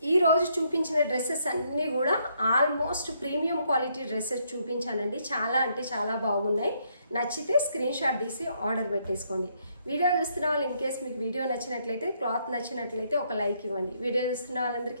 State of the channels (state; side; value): inverted; both; correlation -0.72